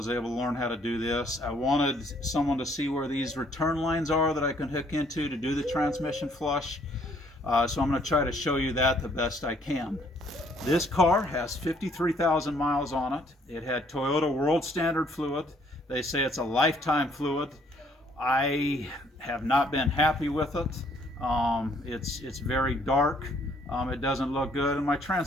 able to learn how to do this. I wanted someone to see where these return lines are that I can hook into to do the transmission flush. So I'm going to try to show you that the best I can. This car has 53,000 miles on it. It had Toyota World Standard fluid. They say it's a lifetime fluid. I have not been happy with it. It's very dark. It doesn't look good, and my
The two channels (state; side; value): normal; both; correlation 0.64